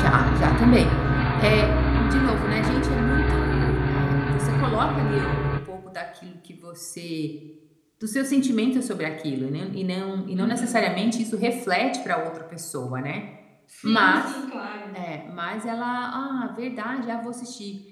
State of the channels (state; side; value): identical; both; correlation 1.00